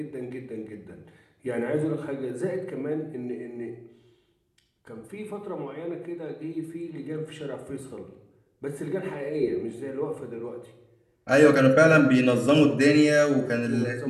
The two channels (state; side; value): identical; both; correlation 1.00